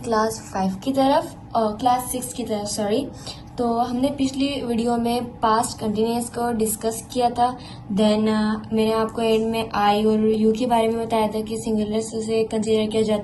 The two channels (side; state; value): both; identical; correlation 1.00